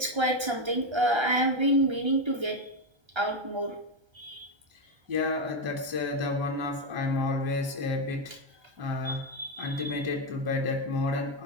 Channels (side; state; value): left; late; 1.3 ms